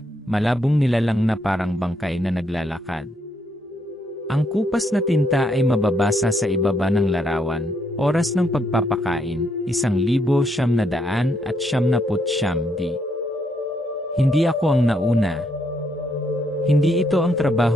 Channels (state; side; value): normal; both; correlation 0.74